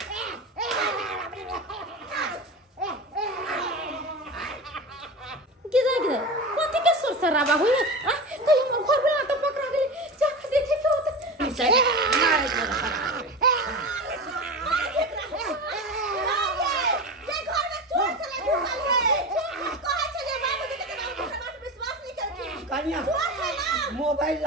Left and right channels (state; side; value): normal; both; correlation 0.27